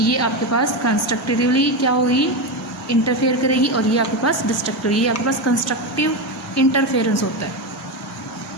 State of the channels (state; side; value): normal; both; correlation 0.14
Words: आपके पास कंस्ट्रक्टिवली क्या होगी, इंटरफेयर करेगी, और ये आपके पास डिस्ट्रक्टिव, ये आपके पास कंस्ट्रक्टिव इंटरफेरेंस होता है,